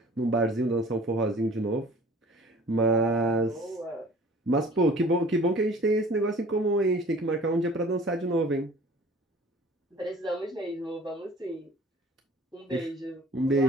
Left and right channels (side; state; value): both; normal; correlation 0.48